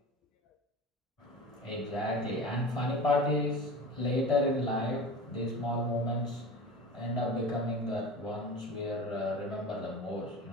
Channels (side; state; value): both; normal; correlation 0.33